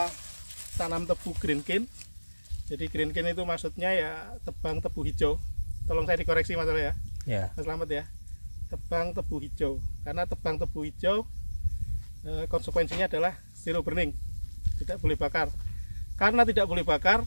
tanam tebu green cane. Jadi green cane itu maksudnya ya tebang tebu hijau. Tolong saya dikoreksi Mas ya. Ya. Mas Slamet ya. Tebang tebu hijau. Karena tebang tebu hijau konsekuensinya adalah zero burning. Tidak boleh bakar. Karena tidak boleh bakar,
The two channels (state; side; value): inverted; both; correlation -1.00